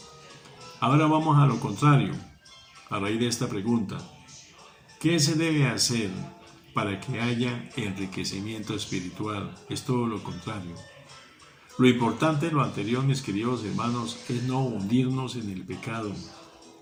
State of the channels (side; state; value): both; identical; correlation 1.00